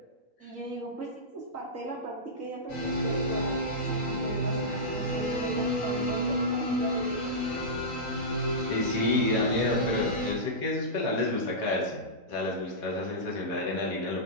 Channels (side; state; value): right; late; 3.9 ms